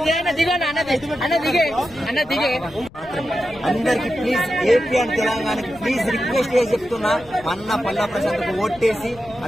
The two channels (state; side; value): noise; left; rumble, 22 dB below the sound